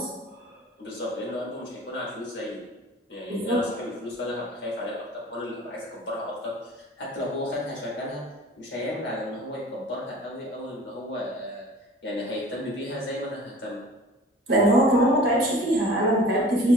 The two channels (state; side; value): normal; both; correlation 0.44